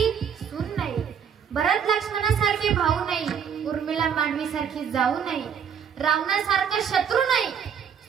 सून नाही, भरत लक्ष्मणासारखे भाऊ नाही, उर्मिला मांडवीसारखी जाऊ नाही, रावणासारखा शत्रू नाही,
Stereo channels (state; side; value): quieter; left; 7.6 dB